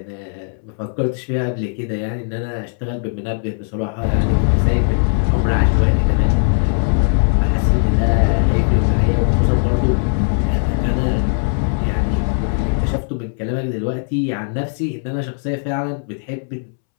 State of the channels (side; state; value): right; silent; 67 dB below the other